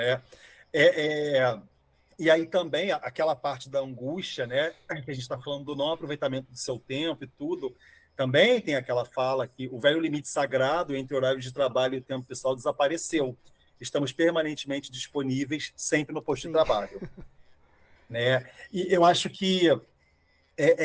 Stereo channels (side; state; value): both; identical; correlation 1.00